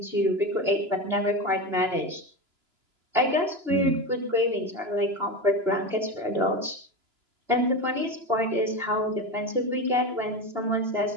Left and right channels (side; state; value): left; late; 2.9 ms